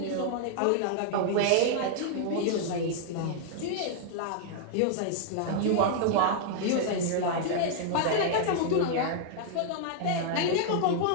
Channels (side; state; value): both; different; correlation -0.01